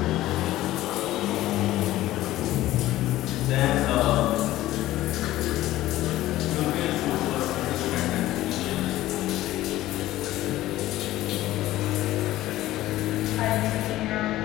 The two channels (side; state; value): right; quieter; 15.5 dB